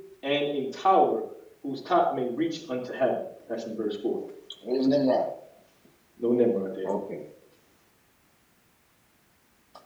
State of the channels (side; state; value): both; identical; correlation 1.00